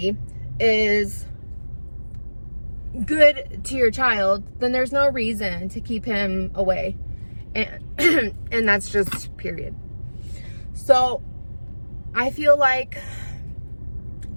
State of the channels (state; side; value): inverted; both; correlation -1.00